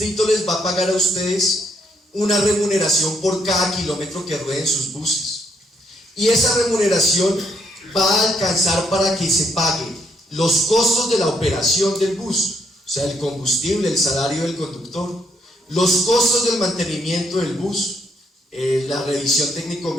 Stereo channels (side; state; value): both; normal; correlation 0.73